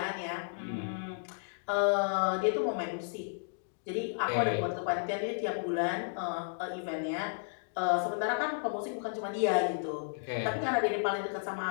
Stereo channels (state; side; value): silent; right; digital silence